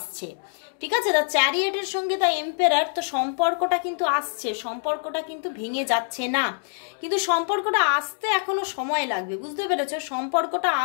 ঠিক আছে? দ্য চ্যারিয়েটের সঙ্গে দ্য এম্পায়ার, তো সম্পর্কটা কিন্তু আসছে, সম্পর্কটা কিন্তু ভেঙে যাচ্ছে না, কিন্তু সম্পর্কটা আসতে এখনো সময় লাগবে, বুঝতে পেরেছো? সম্পর্কটা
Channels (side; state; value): right; silent; digital silence